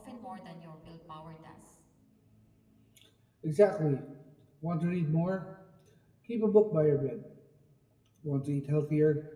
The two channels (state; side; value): identical; both; correlation 1.00